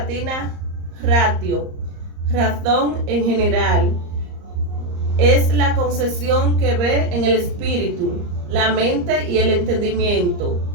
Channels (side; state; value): left; late; 34 ms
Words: ratio, razón en general. Es la concepción que ve en el espíritu, la mente y el entendimiento,